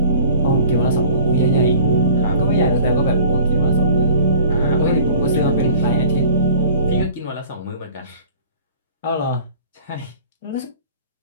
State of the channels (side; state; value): both; inverted; correlation -0.45